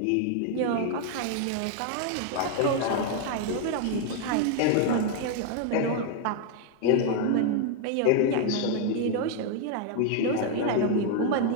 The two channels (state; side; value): different; both; correlation 0.00